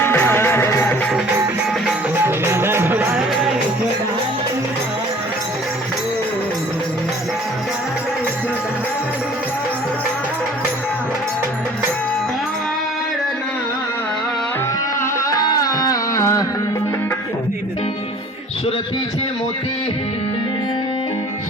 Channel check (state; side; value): normal; both; correlation 0.50